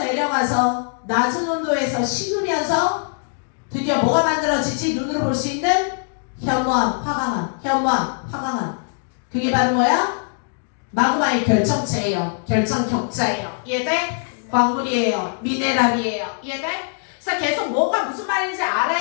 낮은 온도에서 식으면서 드디어 뭐가 만들어지지? 눈으로 볼 수 있는 현무암, 화강암. 그게 바로 뭐야? 마그마의 결정체예요. 결정격자예요. 이해돼? 광물이에요. 미네랄이에요. 이해돼? 그래서 계속 뭐가 무슨 말인지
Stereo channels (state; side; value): silent; right; 64 dB below the other